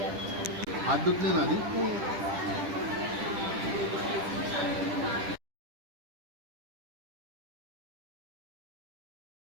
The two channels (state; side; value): late; left; 10 ms